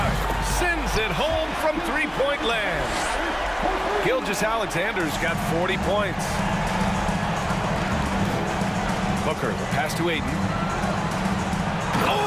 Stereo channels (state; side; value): identical; both; correlation 1.00